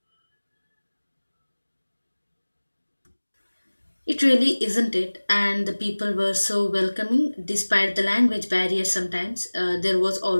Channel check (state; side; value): inverted; both; correlation -1.00